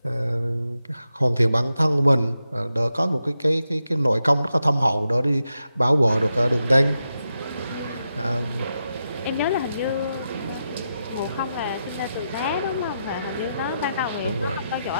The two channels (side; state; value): both; inverted; correlation -0.86